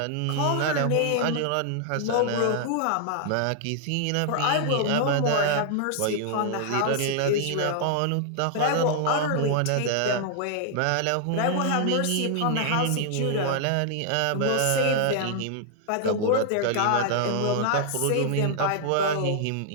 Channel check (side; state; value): both; different; correlation 0.00